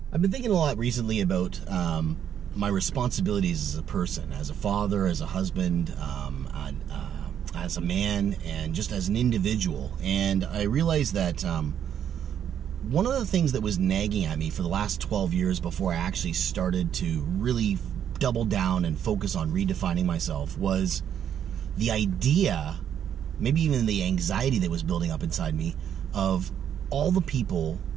I've been thinking a lot recently about my responsibilities as a person, as a father, as a husband, as a man, and just as an individual. And I realized that one of the things that was nagging at me for the last 12 years before I actually started to really double down and focus on redefining myself was the idea, maybe even the anxiety that was building up inside me, of all the people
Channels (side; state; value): left; quieter; 9.2 dB